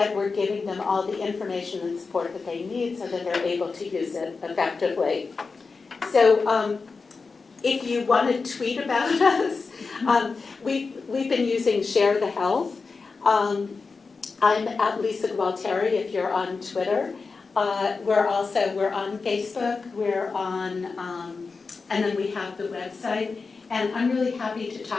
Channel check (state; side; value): quieter; right; 4.5 dB